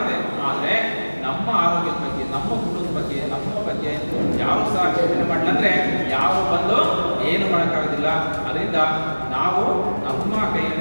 ಆದರೆ ನಮ್ಮ ಆರೋಗ್ಯದ ಬಗ್ಗೆ, ನಮ್ಮ ಕುಟುಂಬದ ಬಗ್ಗೆ, ನಮ್ಮ ಬಗ್ಗೆ ಯಾರು ಸಹ ಚಿಂತನೆ ಮಾಡಲಂದ್ರೆ ಯಾರು ಬಂದು ಏನು ಮಾಡೋಕ್ಕಾಗೋದಿಲ್ಲ. ಅದರಿಂದ ನಾವು ನಮ್ಮ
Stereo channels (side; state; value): both; inverted; correlation -1.00